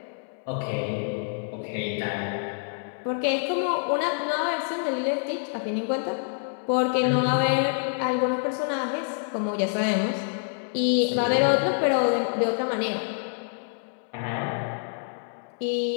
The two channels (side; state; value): right; silent; 60 dB below the other